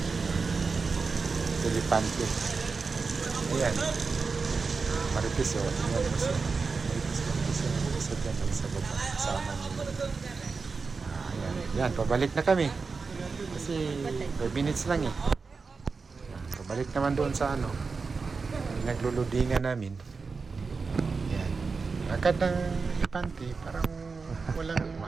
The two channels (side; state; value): left; quieter; 4.6 dB